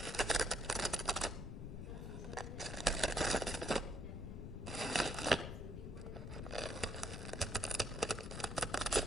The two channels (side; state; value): left; noise; rumble, 6 dB below the sound